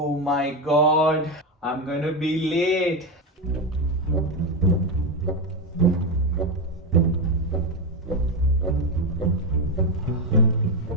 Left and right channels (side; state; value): both; normal; correlation 0.11